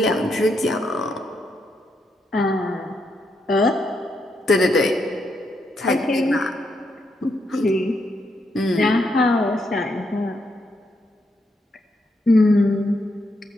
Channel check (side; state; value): both; normal; correlation 0.79